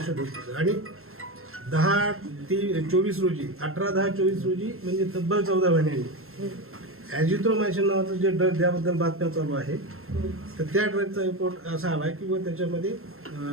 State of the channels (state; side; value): late; left; 0.62 ms